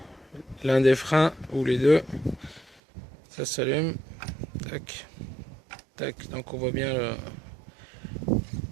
l'un des freins ou les deux, ça s'allume, tac tac, donc on voit bien le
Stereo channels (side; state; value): left; drops out; at 2.8 s